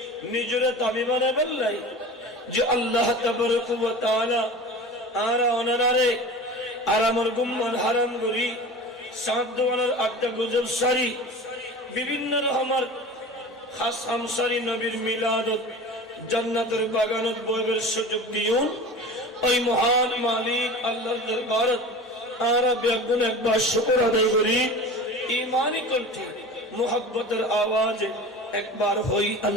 নিজরে দাবি বানায় ফেললাই যে আল্লাহ তাবারক ওয়া তাআলা আর ওনারে আর আমার গুম্মান হারাম করি সাত দোয়ানের আটটা গুজব সারি বিভিন্ন রকমের খাস আমসারি নবীর মিলাদত জান্নাতের বাগানত বইবের সুযোগ দিউন ওই মহান মালিক আল্লাহর দরবারে আমরা বেগুন একবার শুকর আদায় করি ঈমানি কণ্ঠে মুহাব্বতের আওয়াজে একবার হই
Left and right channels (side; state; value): both; normal; correlation 0.35